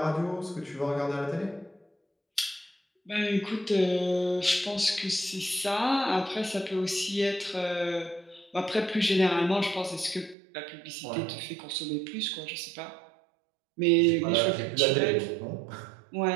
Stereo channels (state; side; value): drops out; left; at 10.4 s